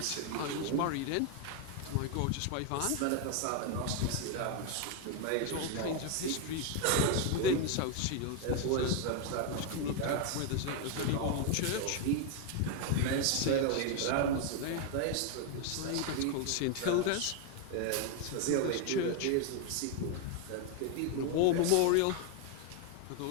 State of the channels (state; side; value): different; both; correlation 0.01